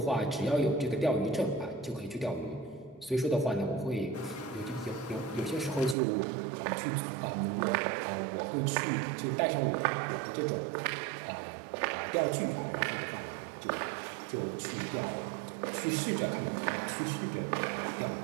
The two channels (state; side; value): drops out; left; at 6.0 s